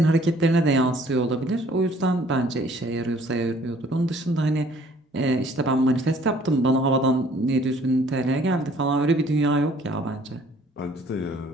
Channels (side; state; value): both; normal; correlation 0.58